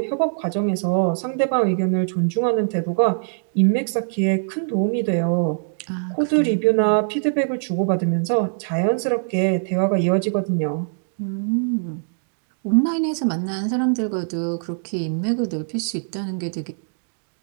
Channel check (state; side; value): silent; left; digital silence